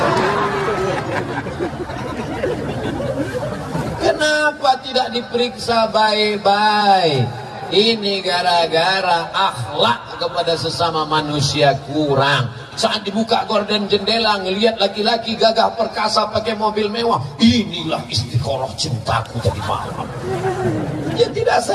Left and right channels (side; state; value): both; identical; correlation 1.00